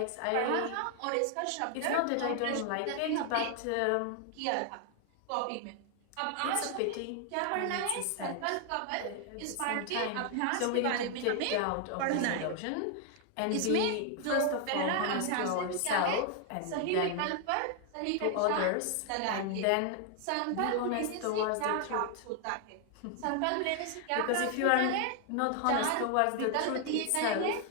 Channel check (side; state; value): both; different; correlation 0.00